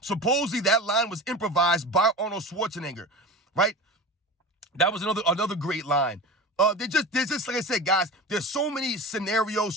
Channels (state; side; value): normal; both; correlation 0.31